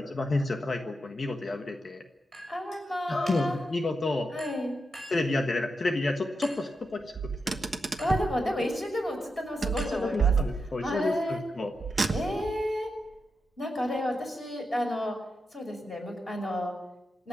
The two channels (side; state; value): both; normal; correlation 0.87